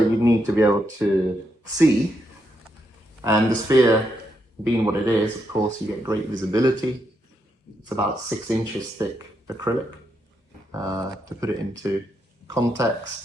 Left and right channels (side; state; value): both; normal; correlation 0.80